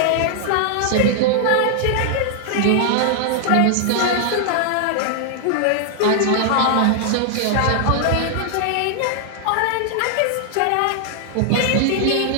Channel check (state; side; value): different; both; correlation 0.00